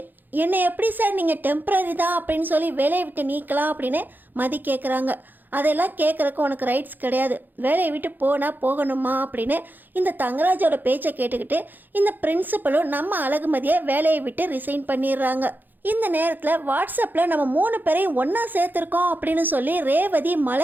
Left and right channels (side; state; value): left; late; 0.088 ms